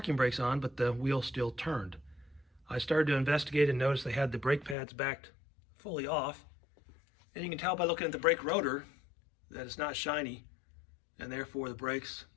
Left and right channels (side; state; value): right; drops out; at 4.8 s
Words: brakes on, but the wheel still turned. I started to investigate and noticed they had the brake pads backed fully off. And you can tell by looking at the brake rotor that it's not shiny, and therefore the brakes